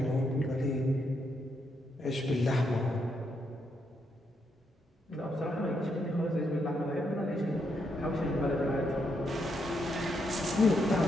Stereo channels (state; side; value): normal; both; correlation 0.79